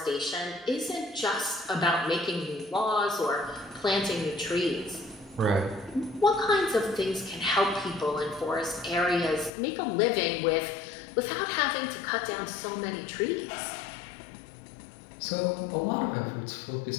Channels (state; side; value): drops out; right; at 9.5 s